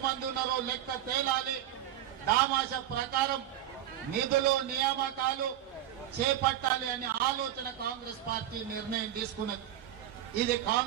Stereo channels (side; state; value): left; quieter; 12.0 dB